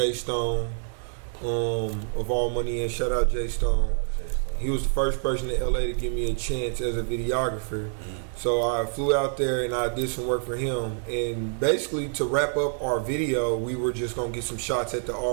Stone, of All Money and shout out Jay Stone. He was the first person in LA to give me a chance as a videographer. So I flew out there and I did some work for him. And basically to wrap up our video, we were just gonna get some shots at the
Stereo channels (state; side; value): silent; left; digital silence